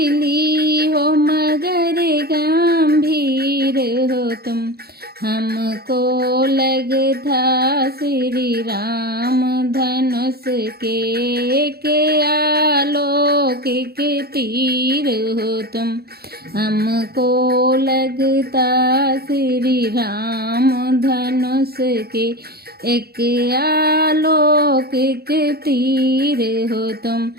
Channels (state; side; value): late; left; 0.46 ms